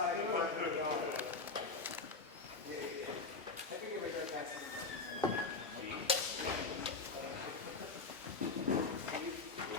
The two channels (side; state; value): right; quieter; 4.1 dB